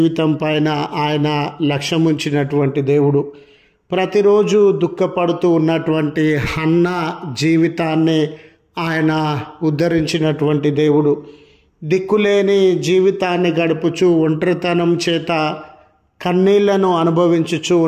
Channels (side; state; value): both; identical; correlation 1.00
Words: పైన ఆయన లక్ష్యం ఉంచినటువంటి దేవుడు. ప్రతిరోజు దుఃఖపడుతూ ఉన్నటువంటి హన్న జీవితాన్ని ఆయన ఉద్ధరించినటువంటి దేవుడు. దిక్కులేని జీవితాన్ని గడుపుచూ ఒంటరితనం చేత కన్నీళ్లను అనుభవించుచూ